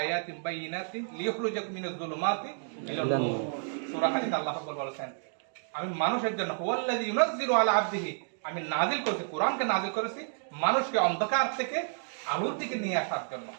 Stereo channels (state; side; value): silent; left; digital silence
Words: বাইয়িনাতিন লিইখরিজাকুম মিনাজ যুলুমাতি ইলান নূর। সূরা হাদীদ আল্লাহ রাব্বুল বলেছেন, আমি মানুষের জন্য ওয়াল্লাযী ইউনাজ্জিলু আলা আবদিহি, আমি নাযিল করেছি, কোরআনকে নাযিল করেছি মানুষকে অন্ধকার থেকে আলোর দিকে নিয়ে আসার জন্য।